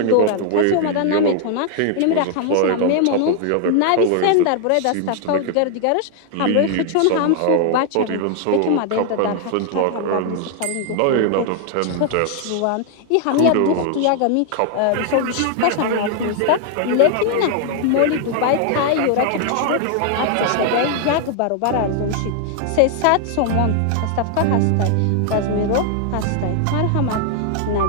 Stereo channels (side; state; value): both; different; correlation 0.00